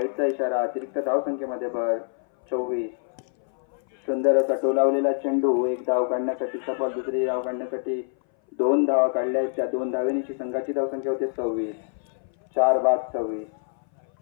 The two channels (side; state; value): right; silent; 59 dB below the other